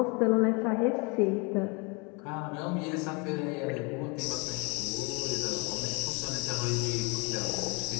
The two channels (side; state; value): right; quieter; 30.9 dB